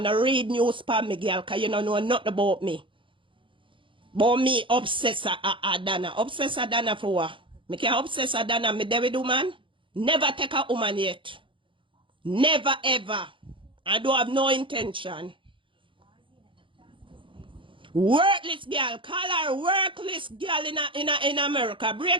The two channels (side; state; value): left; late; 0.25 ms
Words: I read news for me, girl, because you don't know nothing about me. But me obsess Adana. Obsess Adana for what? Me can obsess Adana. Me David woman. Never take a woman yet. Never ever. I don't have no intention. Worthless girl. Call her worthless girl in America.